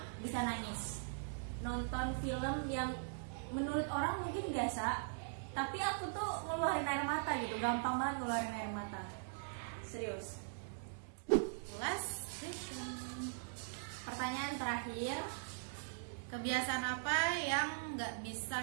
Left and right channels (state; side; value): silent; left; digital silence